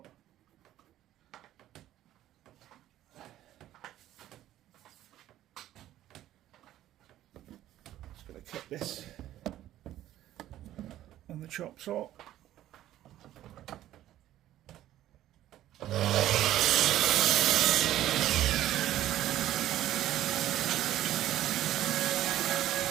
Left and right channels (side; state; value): left; quieter; 13.3 dB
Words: Just going to cut this on the chop saw.